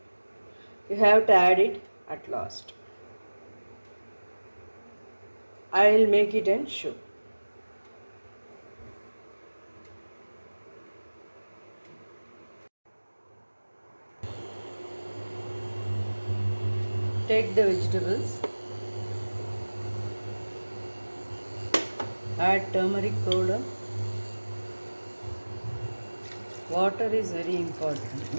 You have to add it at last. I will make it and show. Take the vegetables, add turmeric powder. Water is very important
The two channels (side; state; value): both; inverted; correlation -1.00